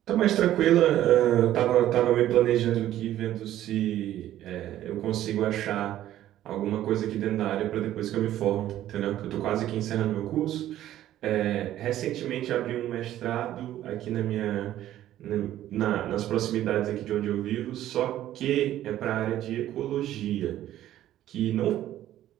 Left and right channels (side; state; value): left; quieter; 12.9 dB